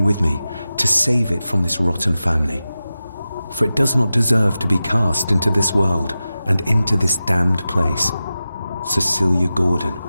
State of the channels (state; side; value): inverted; both; correlation -0.94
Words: me to save it from this rotten family. For it does not deserve to be cast into this world and into this damned place. Cecilia Gordon.